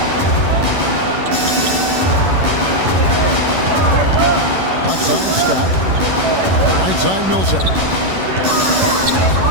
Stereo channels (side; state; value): left; late; 11 ms